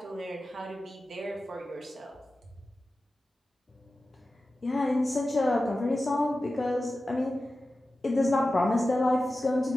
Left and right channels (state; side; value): normal; both; correlation 0.94